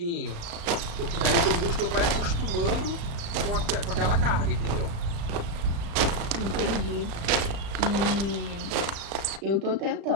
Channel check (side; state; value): left; late; 36 ms